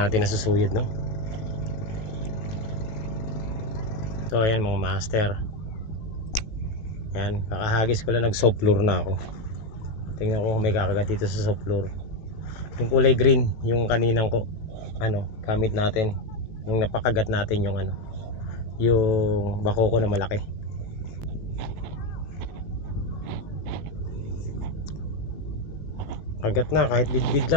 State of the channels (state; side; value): late; right; 18 ms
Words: nasusuyod, no? So ayan mga master. Ayan, kakahagis ko lang, nag soft floor na ako. Tingnan ko kung may kakagat dito sa soft floor. Yung kulay green, yung kaninang ko gamit natin. Yung napakagat natin yung yung bako ko na malaki. Kagat na kahit bidbid